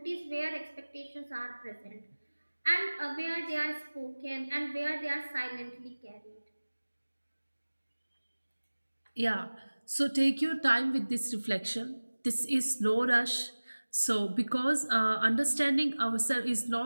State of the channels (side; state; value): both; inverted; correlation -1.00